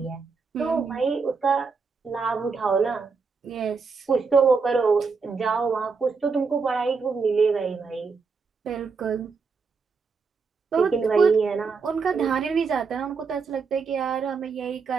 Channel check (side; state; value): left; quieter; 5.0 dB